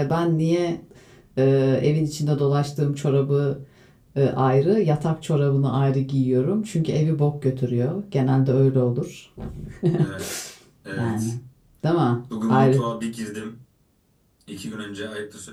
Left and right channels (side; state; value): both; identical; correlation 1.00